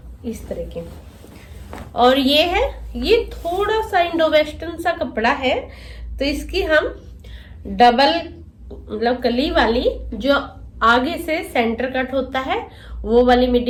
इस तरह की। और ये थोड़ा सा इंडो वेस्टर्न सा कपड़ा है, तो इसकी हम डबल मतलब कली वाली जो आगे से सेंटर कट होता है वो वाली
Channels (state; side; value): identical; both; correlation 1.00